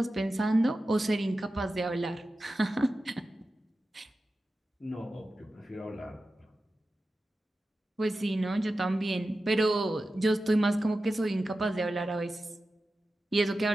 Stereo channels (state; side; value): normal; both; correlation 0.93